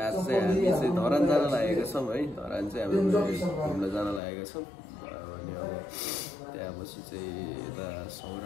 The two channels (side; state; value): right; drops out; at 4.2 s